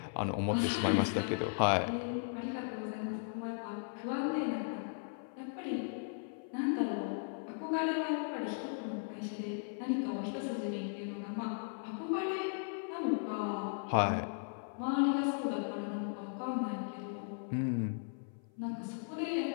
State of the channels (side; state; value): right; silent; 53 dB below the other